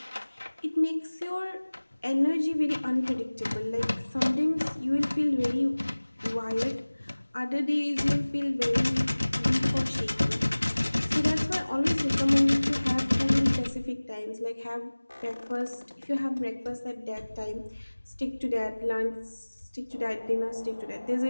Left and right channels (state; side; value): inverted; both; correlation -1.00